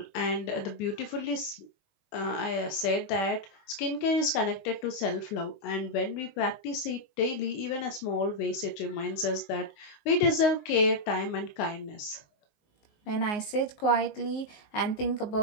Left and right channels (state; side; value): late; right; 19 ms